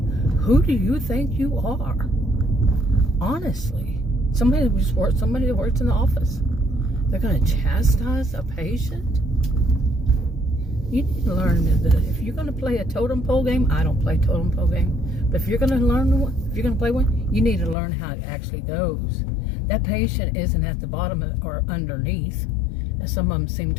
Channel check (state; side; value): drops out; right; at 17.8 s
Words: Who do you think you are? Honestly, somebody that works in the office. They're going to chastise a patient? You need to learn that if you're going to play a totem pole game, I don't play totem pole game, but if you're going to play one, you need to learn how it actually goes. That patient isn't at the bottom or underneath, as some of them seem